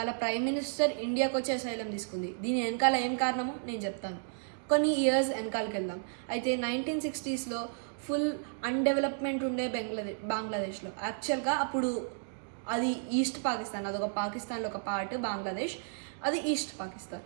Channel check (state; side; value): silent; left; digital silence